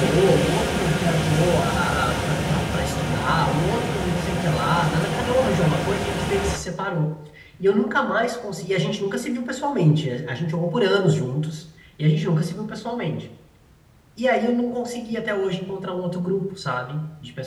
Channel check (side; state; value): both; identical; correlation 1.00